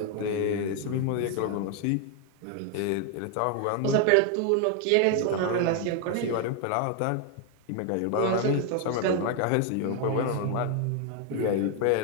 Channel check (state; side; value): different; both; correlation 0.01